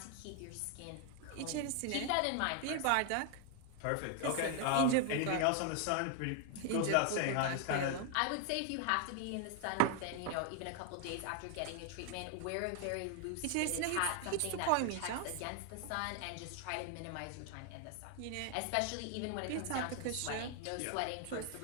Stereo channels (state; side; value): different; both; correlation 0.00